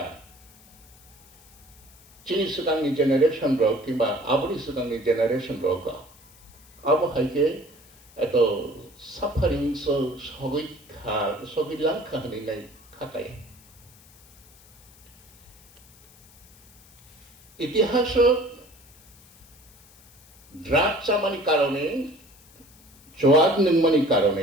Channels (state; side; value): noise; left; hiss, 25 dB below the sound